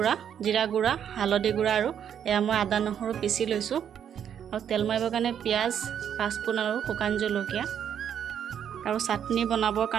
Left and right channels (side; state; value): left; quieter; 8.9 dB